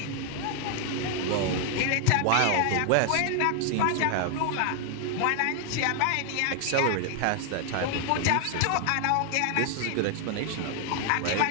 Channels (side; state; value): both; different; correlation 0.00